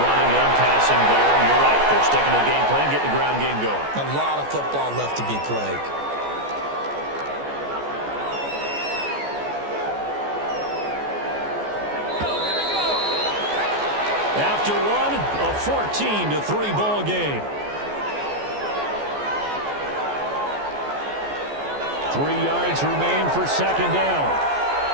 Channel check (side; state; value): left; late; 14 ms